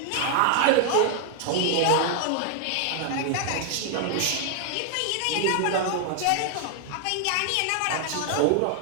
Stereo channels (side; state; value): both; different; correlation 0.00